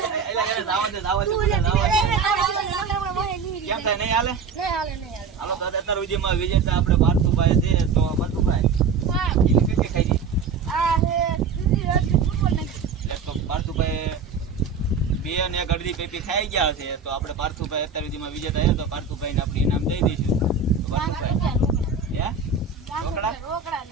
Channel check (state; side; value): quieter; left; 5.4 dB